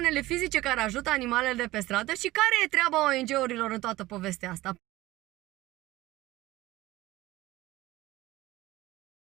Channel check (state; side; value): quieter; left; 17.8 dB